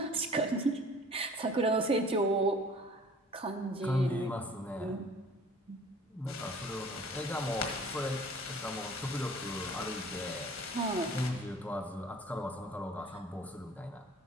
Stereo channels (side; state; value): both; normal; correlation 0.49